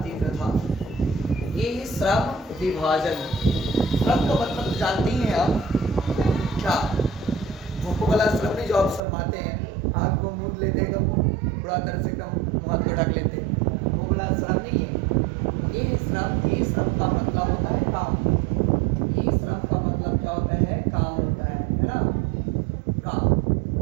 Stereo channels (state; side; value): drops out; left; at 9.0 s